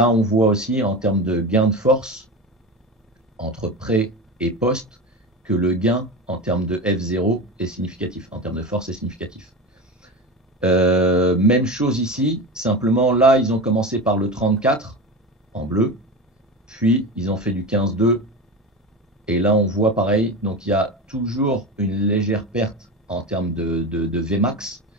on voit aussi en termes de gain de force entre pré et post que le gain en termes de F0 est significatif, en termes de force est significatif. Même chose ici, simplement là, ils ont commencé par le 34 en bleu, puis ils ont fait du 15-2, et là on voit pareil, donc il y a toujours une légère perte en termes de Vmax,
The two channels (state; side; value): normal; both; correlation 0.26